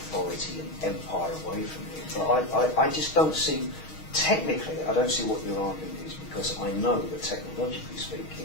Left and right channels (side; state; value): right; late; 6.4 ms